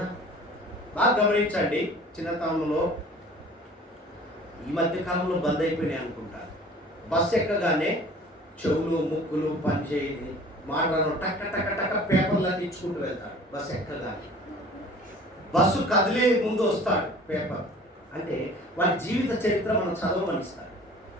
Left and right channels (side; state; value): both; normal; correlation 0.47